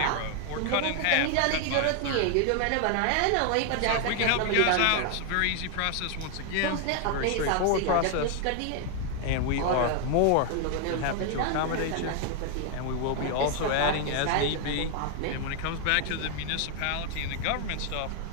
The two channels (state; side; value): different; both; correlation 0.00